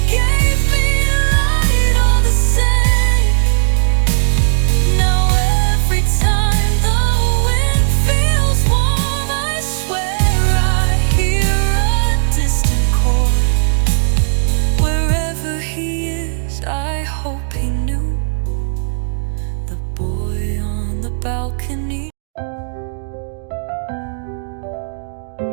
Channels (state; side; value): silent; left; digital silence